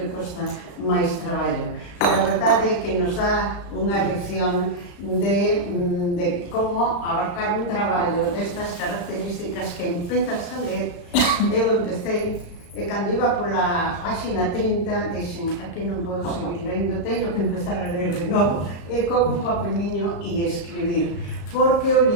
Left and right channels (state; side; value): late; right; 35 ms